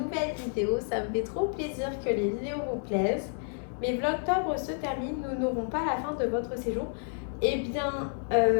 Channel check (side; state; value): right; silent; 58 dB below the other